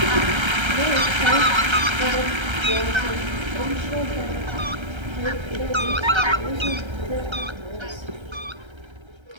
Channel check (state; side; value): late; left; 1.3 ms